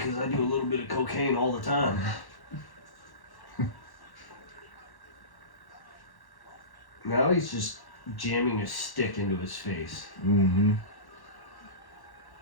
I do a little bit of cocaine all the time. Now he's just jamming a stick into his face. Mm-hmm.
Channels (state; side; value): late; right; 1.1 ms